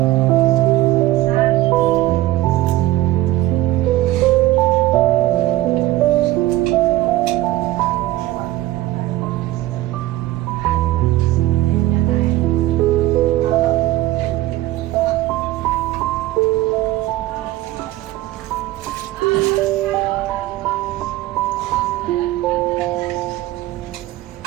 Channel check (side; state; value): left; quieter; 16.3 dB